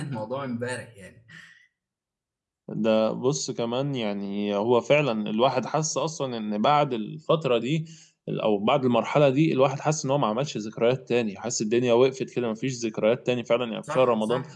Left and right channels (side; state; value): both; identical; correlation 1.00